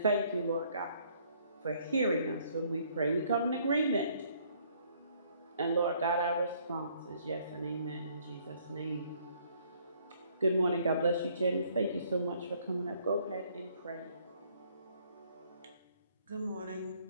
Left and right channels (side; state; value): both; inverted; correlation -0.64